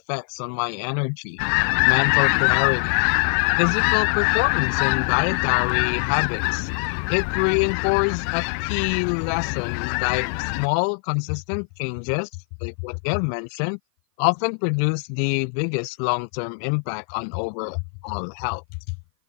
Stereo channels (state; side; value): silent; right; 56 dB below the other